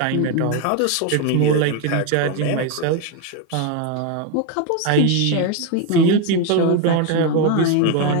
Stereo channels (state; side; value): different; both; correlation 0.01